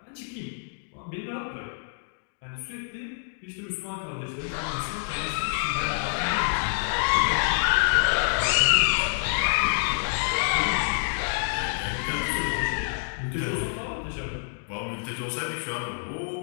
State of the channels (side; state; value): right; silent; digital silence